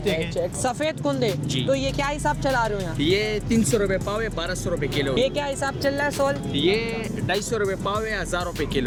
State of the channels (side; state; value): both; identical; correlation 1.00